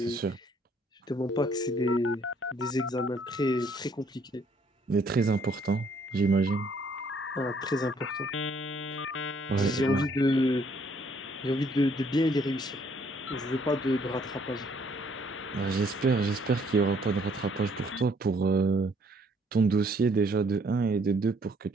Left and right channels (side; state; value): both; normal; correlation 0.65